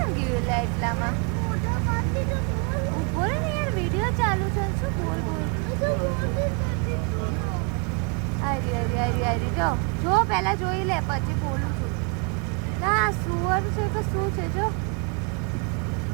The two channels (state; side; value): quieter; left; 34.3 dB